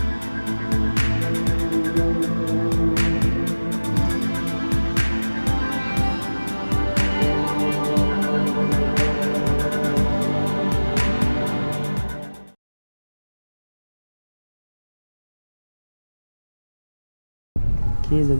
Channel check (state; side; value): inverted; both; correlation -1.00